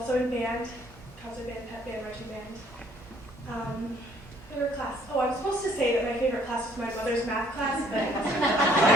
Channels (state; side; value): normal; both; correlation 0.62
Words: in band, concert band, pep band, marching band. Favorite class? Oh, I was supposed to say that my favorite class was my mother's math class, but